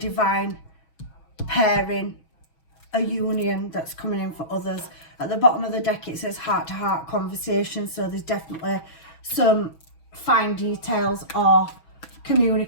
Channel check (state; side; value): late; right; 6.1 ms